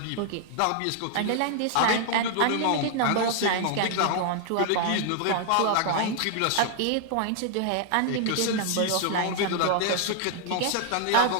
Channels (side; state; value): both; different; correlation 0.00